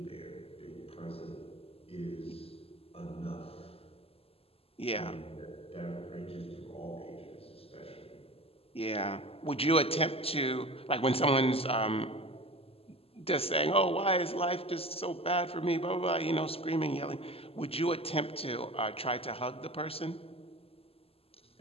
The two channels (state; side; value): late; right; 0.28 ms